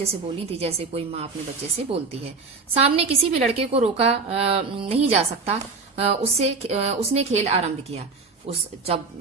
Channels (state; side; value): quieter; left; 4.4 dB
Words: से बोली थी जैसे कोई माँ अपने बच्चे से बोलती है। सामने किसी भी लड़के को रोका नहीं जा सकता। उसने खेल आरंभ किया।